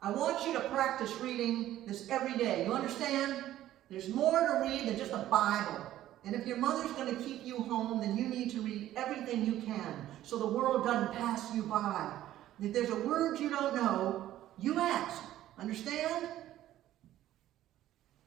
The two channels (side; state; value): left; quieter; 13.4 dB